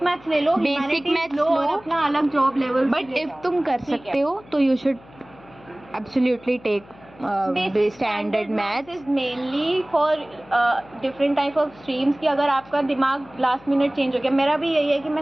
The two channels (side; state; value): left; noise; hum, 24 dB below the sound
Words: मैथ्स ले लो, बेसिक मैथ्स लो, अपना अलग जॉब लेवल। बट इफ तुम कर सकते हो तो you should absolutely take standard maths is mainly for different type of streams की अगर आपका दिमाग लास्ट मिनट चेंज हो गया। मेरा भी यही है कि मैं